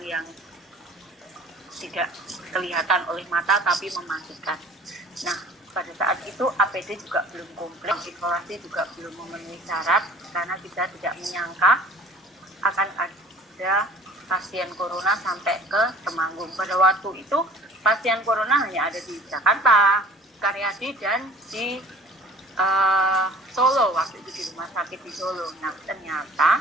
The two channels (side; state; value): both; normal; correlation 0.48